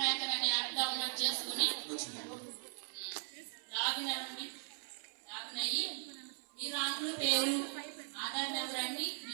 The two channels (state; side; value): silent; left; 52 dB below the other